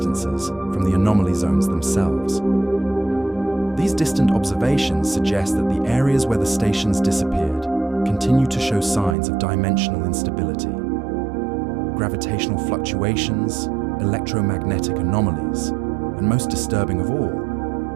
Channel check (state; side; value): drops out; left; at 9.2 s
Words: from the anomaly zones themselves. These distant observations suggest that the areas where the stations disappeared continue to show signs of dimensional instability. Gravitational fluctuations, electromagnetic anomalies, and most disturbing of all,